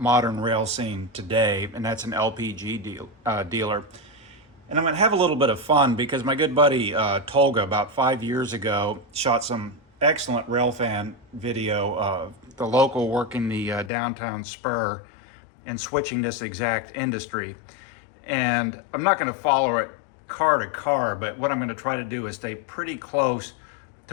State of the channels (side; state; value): right; drops out; at 13.9 s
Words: rail scene today, and that's an LPG dealer. And I'm going to have a little bit of fun because my good buddy Tolga, about 5 years ago, shot some excellent railfan video of the local working the downtown spur and switching this exact industry. And I'm not going to follow it car to car, but what I'm going to try to do is stay pretty close